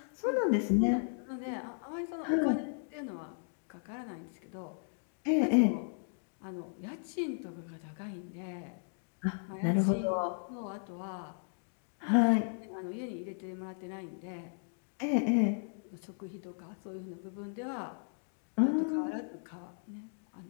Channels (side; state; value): right; silent; digital silence